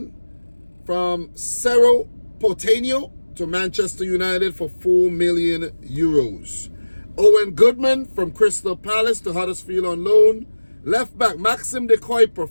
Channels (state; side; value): inverted; both; correlation -1.00